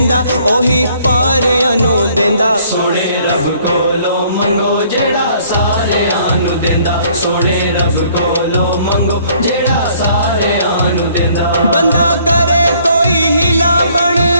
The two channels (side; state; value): both; inverted; correlation -0.61